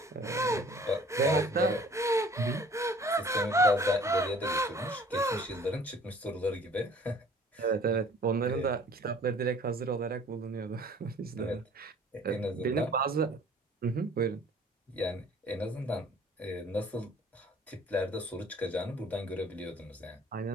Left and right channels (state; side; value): normal; both; correlation 0.52